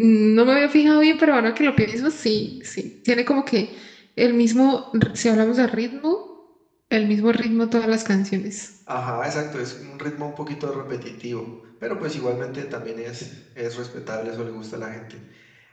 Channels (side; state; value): both; identical; correlation 1.00